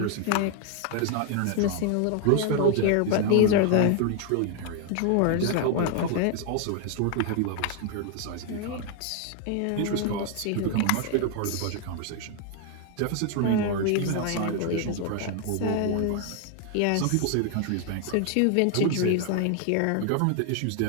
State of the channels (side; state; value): both; different; correlation 0.00